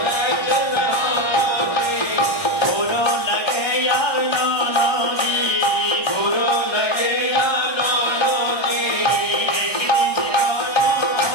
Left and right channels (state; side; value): late; right; 1.3 ms